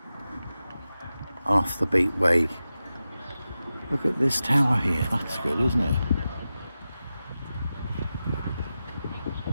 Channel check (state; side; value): inverted; both; correlation -0.93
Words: off the beat way. Look at this tower here, that's good, isn't it?